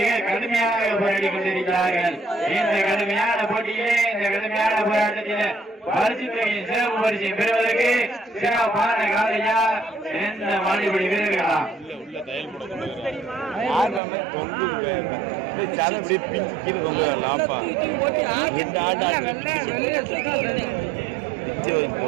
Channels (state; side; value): drops out; left; at 14.0 s